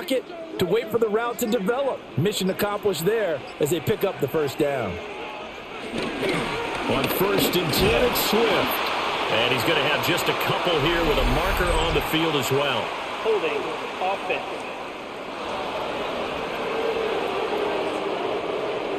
to wait for the route to develop. Mission accomplished there as they pick up the first down. On 1st and 10, it's Swift. And he's going to have just a couple here with a marker on the field as well. Holding offense.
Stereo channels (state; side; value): identical; both; correlation 1.00